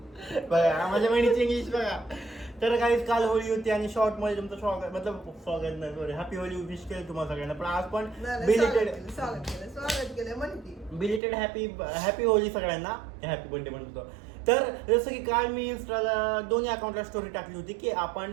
बघा माझ्या बहिणीची इंग्लिश बघा. तर काही काल होळी होती आणि शॉर्ट मध्ये तुमचं स्वागत स्वागत नाही सॉरी हॅपी होली विश केलं तुम्हाला सगळ्यांना. पण आज पण स्वागत केलं म्हणते बिलेटेड हॅपी होली सगळ्यांना. हॅपी बर्थडे म्हणतो. तर जसं की काल मी इंस्टाला दोन्ही अकाउंटला स्टोरी टाकली होती की आपण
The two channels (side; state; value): left; drops out; at 11.2 s